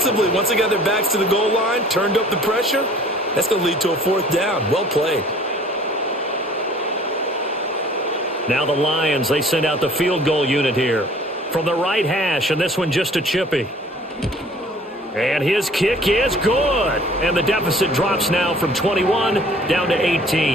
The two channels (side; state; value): both; normal; correlation 0.52